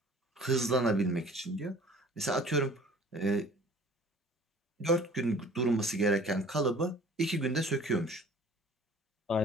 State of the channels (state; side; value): normal; both; correlation 0.49